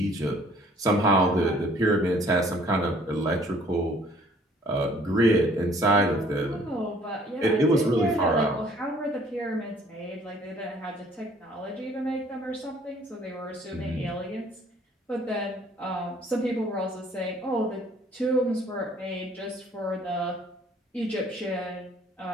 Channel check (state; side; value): normal; both; correlation 0.58